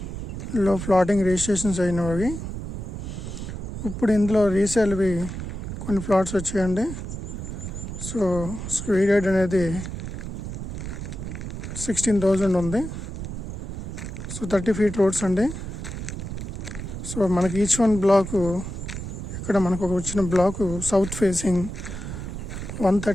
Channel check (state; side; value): noise; right; rumble, 7 dB below the sound